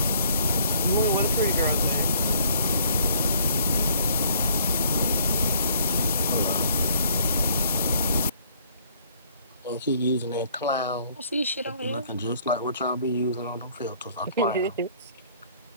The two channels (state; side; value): inverted; both; correlation -0.61